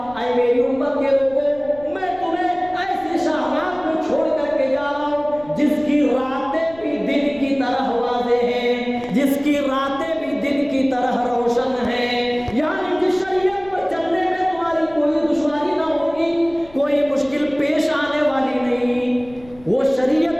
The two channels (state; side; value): noise; left; rumble, 23 dB below the sound